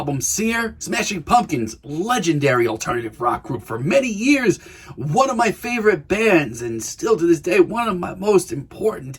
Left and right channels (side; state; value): both; identical; correlation 1.00